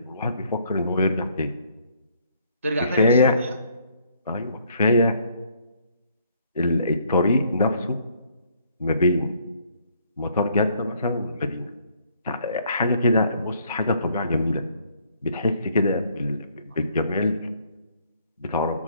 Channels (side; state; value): both; inverted; correlation -0.65